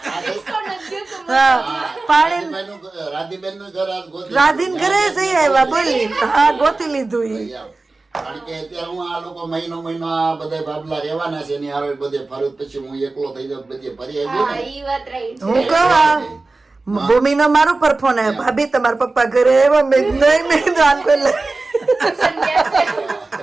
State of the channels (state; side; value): quieter; left; 3.4 dB